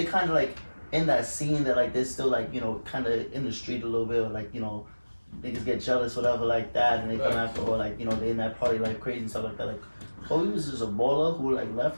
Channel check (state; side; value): inverted; both; correlation -1.00